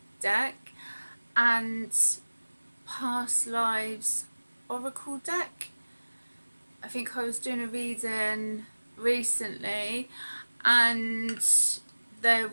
deck and Past Lives Oracle deck. I think I was doing a reading recently and there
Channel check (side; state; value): both; inverted; correlation -1.00